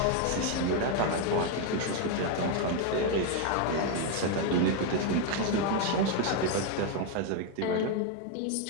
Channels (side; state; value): both; different; correlation 0.01